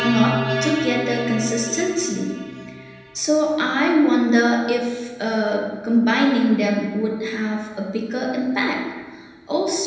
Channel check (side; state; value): both; identical; correlation 1.00